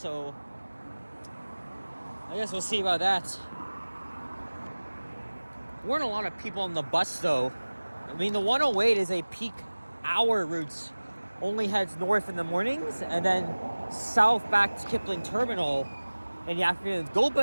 I guess we'll see about that. There weren't a lot of people on the bus, though. I mean, the 108 is a peak hour route. Only heads north in the mornings, and then south back to Kipling Terminal in the afternoon. Go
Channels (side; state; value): both; inverted; correlation -1.00